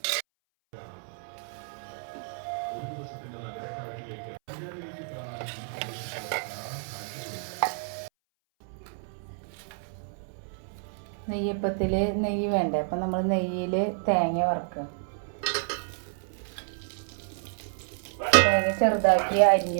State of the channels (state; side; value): silent; left; 58 dB below the other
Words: നെയ്യപ്പത്തിൽ നെയ്യ് വേണ്ടേ, അപ്പം നമ്മൾ നെയ്യിൽ തേങ്ങ വറുക്കുക. തേങ്ങ ചെറുതാക്കി അരിഞ്ഞു